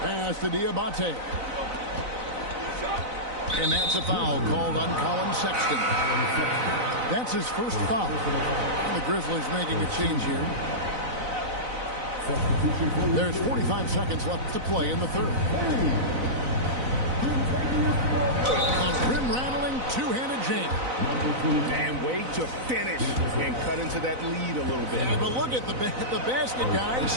to Diabate. And that's a foul called on Colin Sexton. That's his first foul. And the Grizzlies making a change here. There's 45 seconds left to play in the third. A rim-rattling two-handed jam. And way to finish and cut into that lead a little bit. Yeah, but look at the basket guy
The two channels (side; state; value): left; late; 4.0 ms